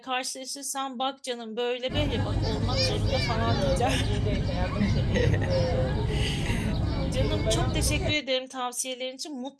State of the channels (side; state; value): both; identical; correlation 1.00